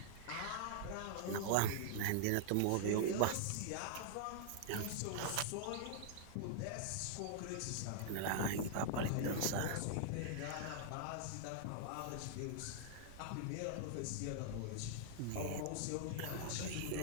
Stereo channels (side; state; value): both; different; correlation -0.01